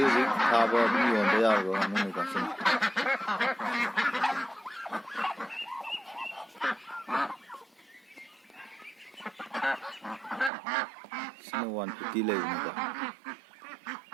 ꯊꯥꯕ ꯑꯗꯨꯝ ꯌꯣꯟꯕ ꯌꯥꯔꯕ ꯉꯥꯅꯨꯅꯤꯀꯣ ꯁꯤꯅ. ꯁꯤꯅ 150 ꯂꯩꯕꯅꯤꯀꯣ.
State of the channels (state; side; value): drops out; left; at 10.5 s